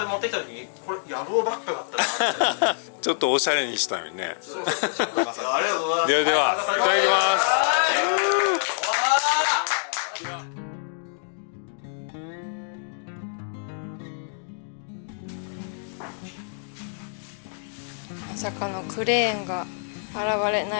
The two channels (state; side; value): silent; right; digital silence